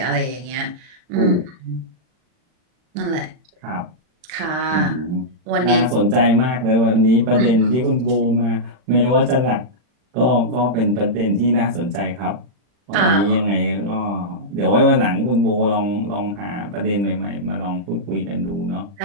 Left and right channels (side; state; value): left; late; 40 ms